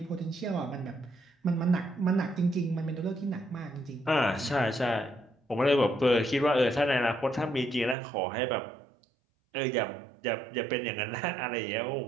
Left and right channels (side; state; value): left; drops out; at 8.0 s